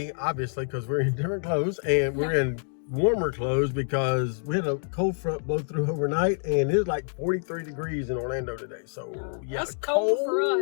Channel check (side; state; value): right; silent; digital silence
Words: obviously, because we're in different clothes, and we're in warmer clothes because we had a cold front blow through overnight, and it's like 43 degrees in Orlando today. So yeah, that's cold for